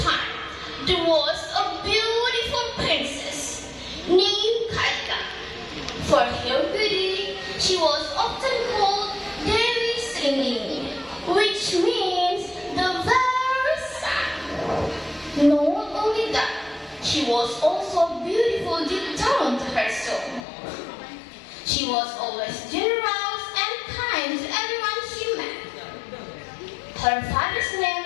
time, there was a beautiful princess named Kaika. For her beauty, she was often called Devi Singing, which means the very sun. Not only that, she was also beautiful deep down to her soul. She was always generous and kind to everyone she met. Her father's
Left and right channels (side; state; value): right; drops out; at 20.5 s